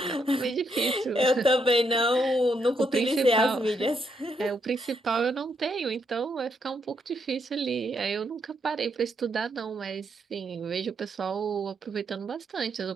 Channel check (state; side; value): normal; both; correlation 0.77